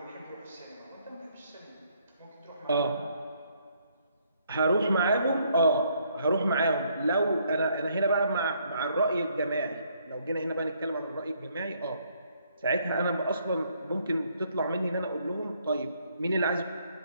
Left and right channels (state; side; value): inverted; both; correlation -0.69